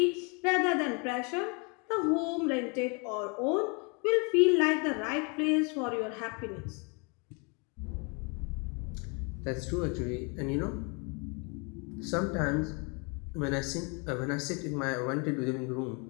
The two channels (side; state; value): right; quieter; 33.3 dB